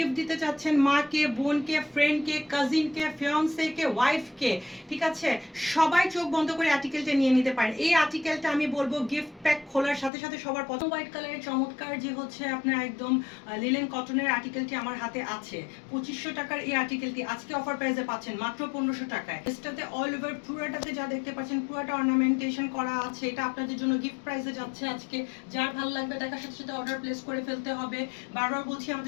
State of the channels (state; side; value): drops out; right; at 10.1 s